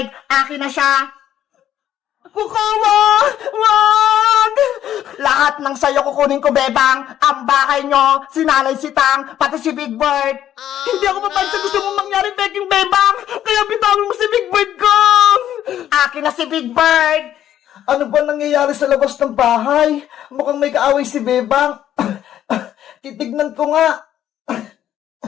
akin na siya. Kukawa! Wag! Lahat ng sayo kukunin ko, bebang. Ang bahay nyo, si Nanay Sitang, pati si Big Bird. Hindi ako papayag sa gusto mong mangyari, Peking Bebang! Kaya bitawin mo si Big Bird ko! Akin na si Big Bird. Ano ba nangyayari sa labas ng bahay? Mukhang may kaaway si Bebang. Titignan ko nga.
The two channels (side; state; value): right; quieter; 11.2 dB